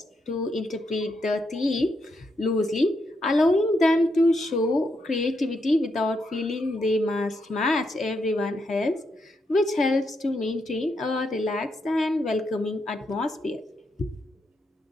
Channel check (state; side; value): normal; both; correlation 0.81